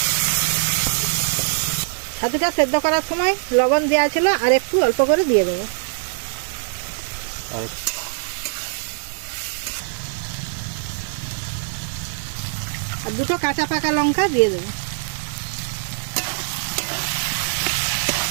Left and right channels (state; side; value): silent; left; digital silence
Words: ছাতুটা সেদ্ধ করার সময় লবণ দেওয়া ছিল, আর একটু অল্প করে দিয়ে দেবো। আর দুটো কাঁচা পাকা লঙ্কা দিয়ে দেবো।